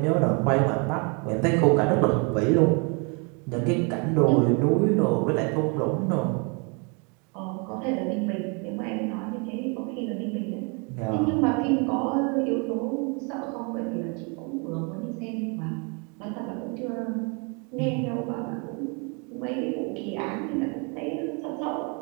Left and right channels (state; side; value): quieter; left; 34.1 dB